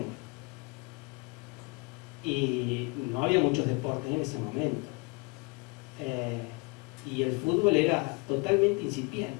Y no había muchos deportes en ese momento. Y el fútbol era totalmente incipiente.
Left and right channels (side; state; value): right; quieter; 29.5 dB